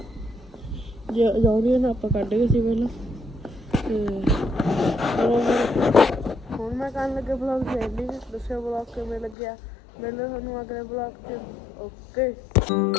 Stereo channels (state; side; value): drops out; right; at 9.3 s